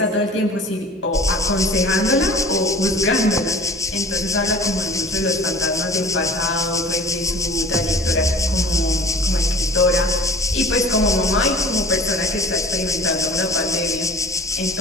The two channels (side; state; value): both; normal; correlation 0.43